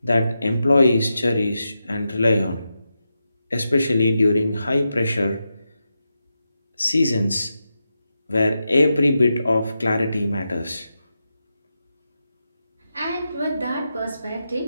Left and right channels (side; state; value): both; inverted; correlation -0.88